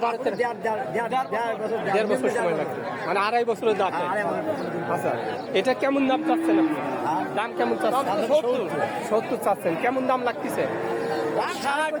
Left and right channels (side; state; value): both; identical; correlation 1.00